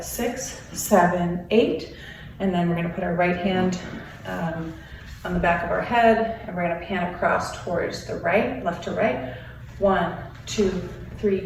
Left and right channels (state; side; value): identical; both; correlation 1.00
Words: 7, 8. And then we're gonna put our right hand on the back of our head, and we're gonna pan across towards the right, left to right. 1, 2,